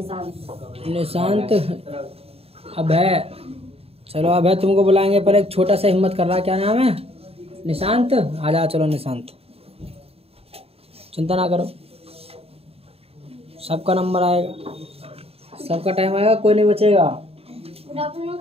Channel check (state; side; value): late; left; 0.29 ms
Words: Nishant, Abhay. चलो अभय तुमको बुलाएंगे, पर एक छोटा सा हिम्मत कर रहा है। क्या नाम है? निशांत। आ जाओ। चलो निशांत, चिंता ना करो, सबका नंबर आएगा, सबका टाइम आएगा, कोई नहीं बचेगा। good afternoon,